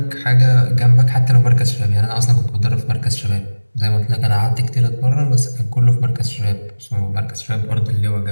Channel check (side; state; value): both; inverted; correlation -1.00